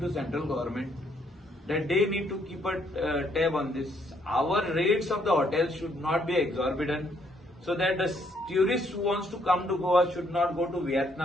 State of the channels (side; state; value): both; normal; correlation 0.70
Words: to central government that they need to keep a tab on this. Our rates of the hotels should not be exorbitant, so that the tourist who wants to come to Goa should not go to